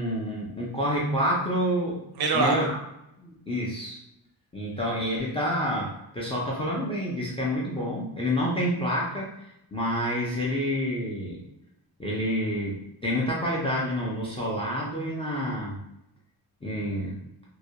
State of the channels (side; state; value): both; normal; correlation 0.19